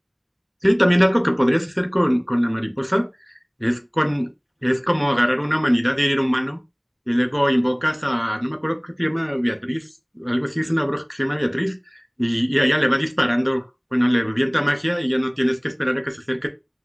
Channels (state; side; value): identical; both; correlation 1.00